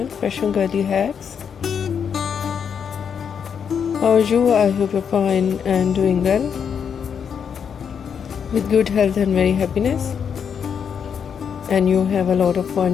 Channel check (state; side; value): quieter; right; 7.2 dB